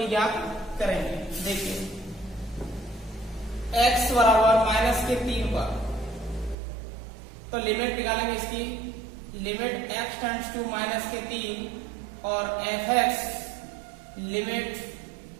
ज्ञात करेंगे। देखिए x बराबर -3 पर, तो लिमिट निकालेंगे इसकी, लिमिट x टेंड्स टू -3 और fx limit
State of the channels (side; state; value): left; drops out; at 6.6 s